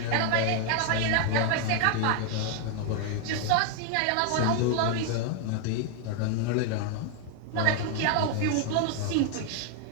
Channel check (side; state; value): both; different; correlation 0.00